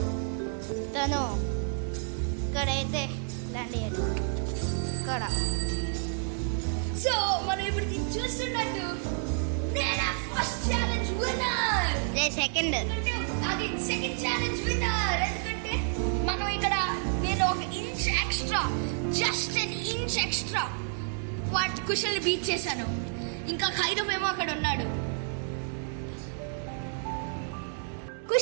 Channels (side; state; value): left; silent; 58 dB below the other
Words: తను ఇక్కడైతే ల్యాండ్ అయ్యాడు. ఇక్కడ సో మనం ఇప్పుడు చూస్తున్నట్టు నేను ఫస్ట్ ఛాలెంజ్ విన్నర్. సెకండ్ అది సెకండ్ ఛాలెంజ్ విన్నర్. ఎందుకంటే మనం ఇక్కడ నేను ఒక inch extra, just an inch extra వాటి కుషల్ని బీట్ చేశాను. ఇంకా ఖైరవ్ ఏమో అక్కడ ఉన్నాడు.